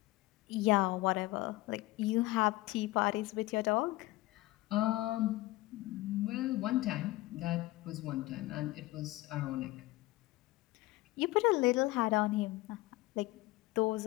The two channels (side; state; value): right; quieter; 19.1 dB